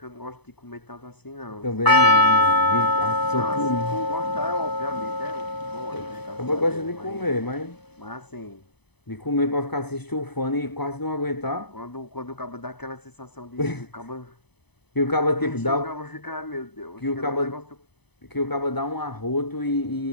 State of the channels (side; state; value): right; late; 0.98 ms